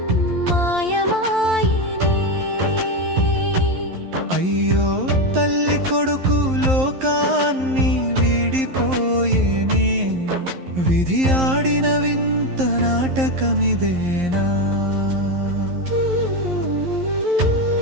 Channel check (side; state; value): left; late; 11 ms